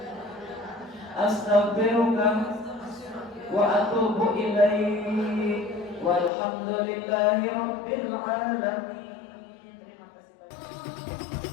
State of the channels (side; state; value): right; drops out; at 6.3 s